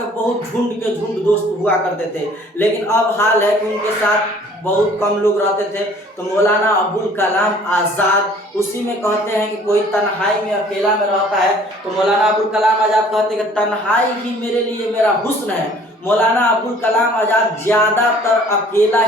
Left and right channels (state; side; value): normal; both; correlation 0.54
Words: बहुत झुंड के झुंड दोस्त हुआ करते थे। लेकिन अब हाल है कि उनके साथ बहुत कम लोग रहते थे। तो मौलाना अबुल कलाम आज़ाद उसी में कहते हैं कि कोई तन्हाई में अकेला में रहता है, तो मौलाना अबुल कलाम आज़ाद कहते हैं कि तन्हाई ही मेरे लिए मेरा हुस्न है। मौलाना अबुल कलाम आज़ाद ज़्यादातर अकेला